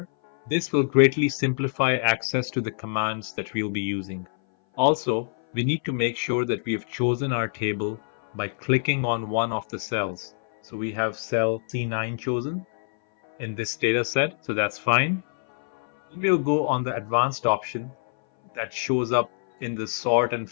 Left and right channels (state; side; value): silent; right; 59 dB below the other